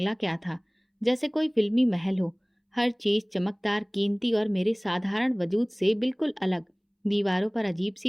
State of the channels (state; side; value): identical; both; correlation 1.00